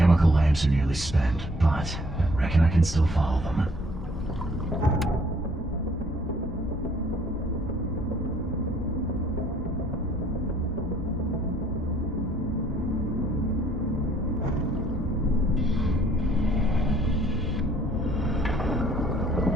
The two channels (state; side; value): normal; both; correlation 0.61